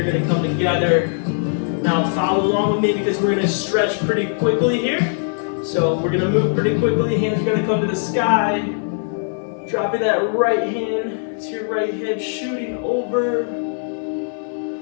going to come together. Now follow along with me because we're going to stretch pretty quickly here. So we're going to move pretty quickly. Hands are going to come to the sky. Dropping that right hand to your right hip, shooting over.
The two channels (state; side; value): silent; right; 55 dB below the other